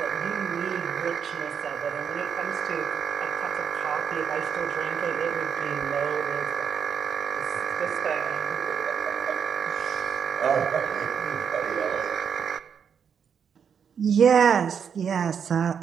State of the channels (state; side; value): quieter; left; 7.3 dB